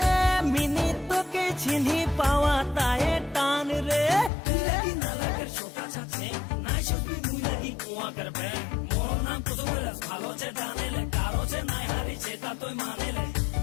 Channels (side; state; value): right; drops out; at 4.3 s